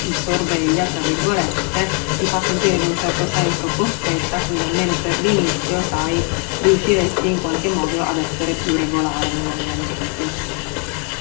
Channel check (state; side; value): quieter; right; 37.7 dB